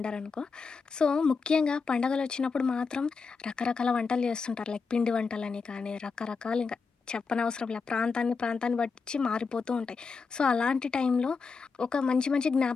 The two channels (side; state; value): right; quieter; 4.9 dB